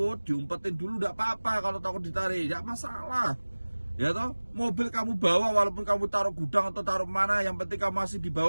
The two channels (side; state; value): both; inverted; correlation -1.00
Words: diumpetin dulu enggak apa-apa. Kalau takut ditarik, enggak masalah. Ya toh, mobil kamu bawa walaupun kamu taruh gudang atau taruh mana, yang penting kamu masih di